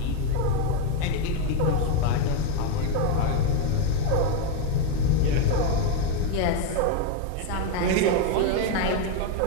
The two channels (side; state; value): both; different; correlation 0.02